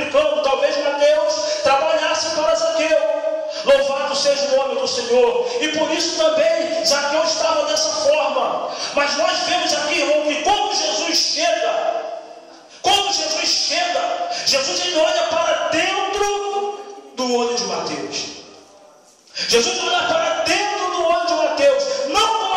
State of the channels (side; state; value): both; identical; correlation 1.00